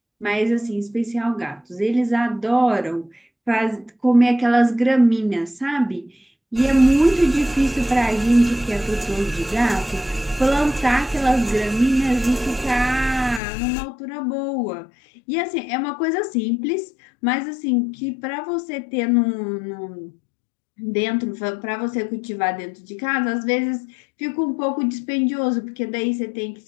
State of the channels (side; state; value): right; drops out; at 13.4 s